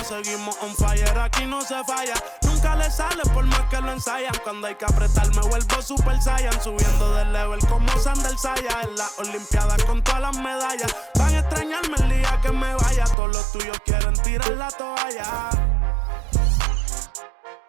Seguimos on fire, aquí no se falla. Nunca le sale por más que lo ensayan. Cuando hay que apretar me vuelvo super saiyan. Subiendo de level como Sandal Saya. En las olimpiadas con todas las medallas. Van a extrañarme el día que me vaya. Todos los tuyos quieren tirar la toalla.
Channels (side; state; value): left; drops out; at 13.2 s